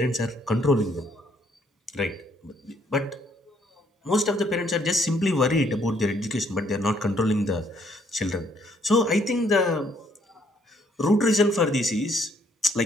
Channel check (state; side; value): normal; both; correlation 0.67